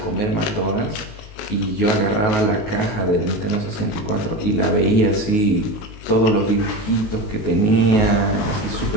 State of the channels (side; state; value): right; late; 19 ms